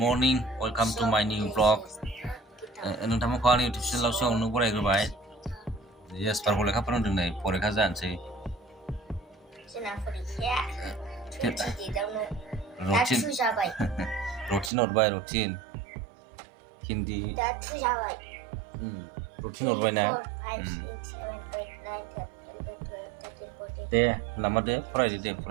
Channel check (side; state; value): left; drops out; at 14.7 s